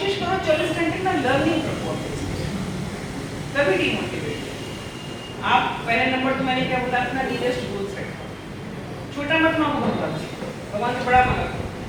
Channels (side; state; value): both; identical; correlation 1.00